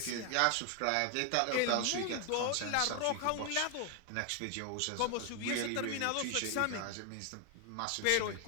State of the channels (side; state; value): both; different; correlation 0.00